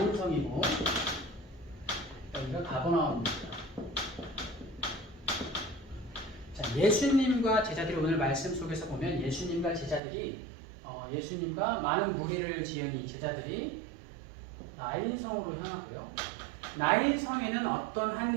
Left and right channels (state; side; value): drops out; left; at 10.0 s